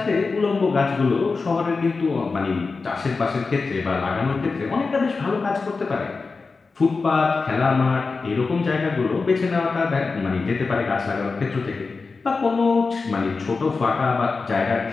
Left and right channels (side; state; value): right; quieter; 4.3 dB